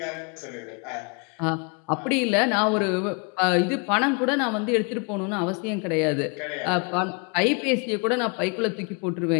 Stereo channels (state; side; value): quieter; right; 34.1 dB